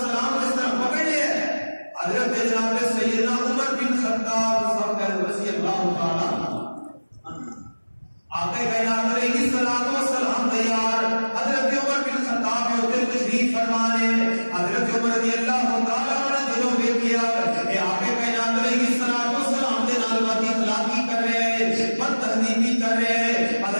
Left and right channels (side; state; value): both; inverted; correlation -1.00